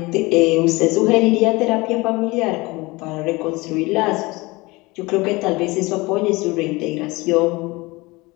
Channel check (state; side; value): quieter; right; 23.2 dB